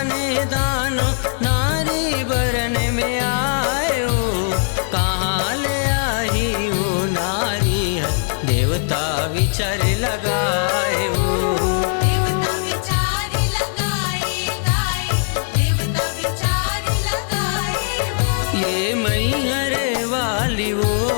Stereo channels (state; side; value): silent; right; digital silence